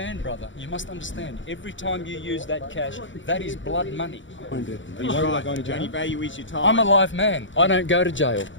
brother. You must understand. Every time you use that cash, that is blood money. Are you worried about going to jail? Only value is your time. I'm a live man. I don't go to jail.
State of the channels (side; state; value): right; late; 0.55 ms